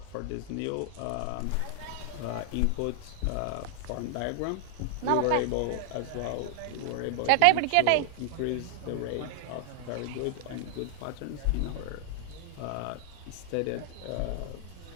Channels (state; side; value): different; both; correlation 0.00